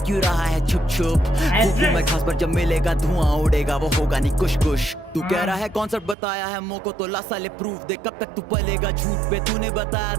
रहा है छुप छुप। फूकू मैं खास पर जब मिलेगा धुआं उड़ेगा वो होगा नहीं कुछ कुछ। तू कह रहा है कॉन्सेप्ट बताया है मोको तो ला साले प्रूफ दे, कब तक तू पलेगा झूठ पे। तूने बताया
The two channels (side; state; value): left; drops out; at 6.2 s